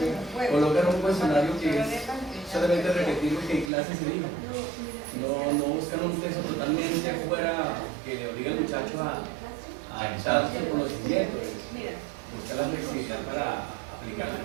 colocan un cuestionario que es solamente repetir lo que en clase se dijo. No buscan un texto totalmente fuera que le obligue al muchacho a echar su conocimiento, buscar la flexibilidad para aplicar lo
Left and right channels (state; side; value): drops out; left; at 3.7 s